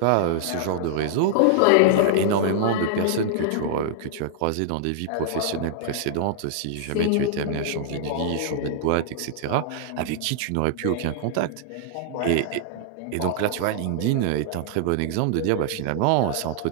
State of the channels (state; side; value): different; both; correlation -0.01